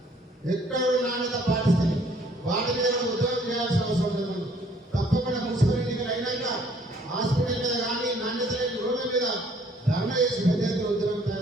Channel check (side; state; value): both; normal; correlation 0.61